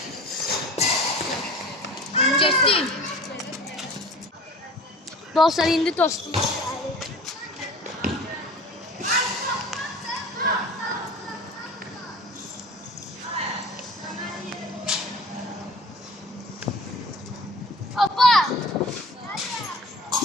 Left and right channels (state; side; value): normal; both; correlation 0.42